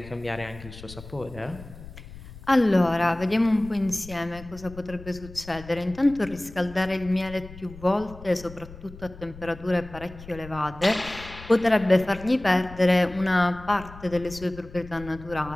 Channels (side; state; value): left; noise; rumble, 16 dB below the sound